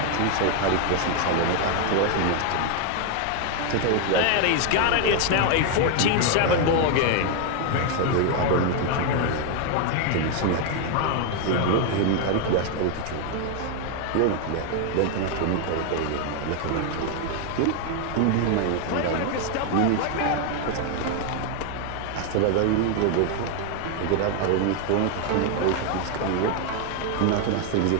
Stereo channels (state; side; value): different; both; correlation 0.01